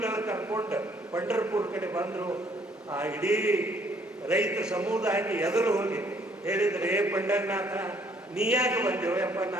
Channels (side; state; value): both; normal; correlation 0.64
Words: ಕರ್ಕೊಂಡು ಪಂಡರ್ಪುರ ಕಡೆ ಬಂದರು. ಆ ಇಡೀ ರೈತ ಸಮುದಾಯಕ್ಕೆ ಎದುರು ಹೋಗಿ ಹೇಳಿದ್ರೆ, ಏ ಪಂಡರನಾಥ ನೀ ಯಾಕೆ ಬಂದೇವು ಯಪ್ಪ